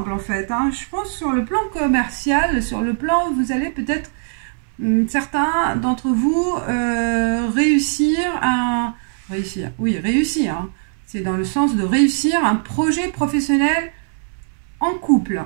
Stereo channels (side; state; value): left; silent; 66 dB below the other